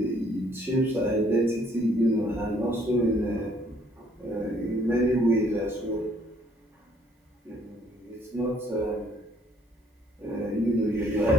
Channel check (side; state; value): both; normal; correlation 0.64